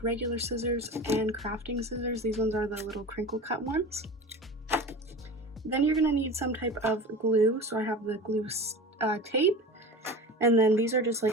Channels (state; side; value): normal; both; correlation 0.33